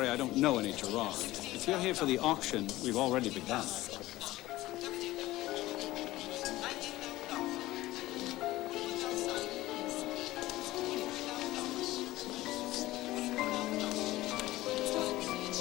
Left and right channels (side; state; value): right; quieter; 17.3 dB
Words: I don't know any Gerard. If you're here for the auction, we've already begun.